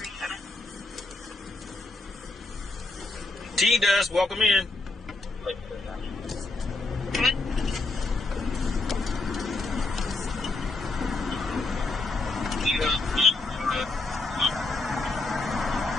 T-Dust, welcome in. Good.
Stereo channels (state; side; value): quieter; right; 3.3 dB